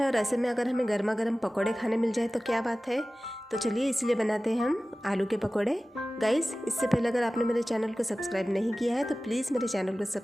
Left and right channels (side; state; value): both; normal; correlation 0.97